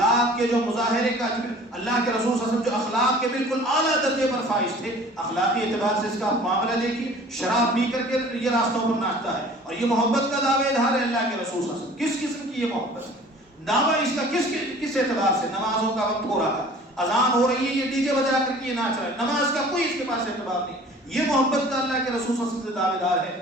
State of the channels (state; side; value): normal; both; correlation 0.48